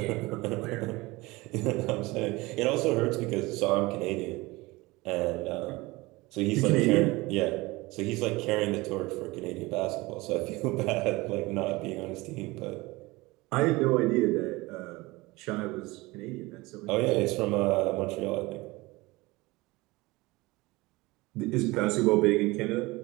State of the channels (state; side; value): quieter; left; 21.9 dB